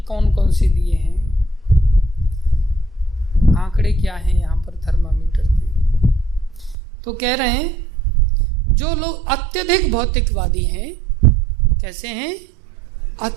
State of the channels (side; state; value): left; drops out; at 6.8 s